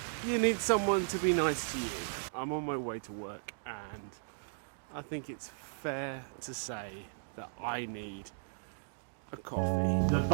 you need someone to be nice to you. I'm on my way to work and I think it's fair to say that I need a coffee. The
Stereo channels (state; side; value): silent; left; digital silence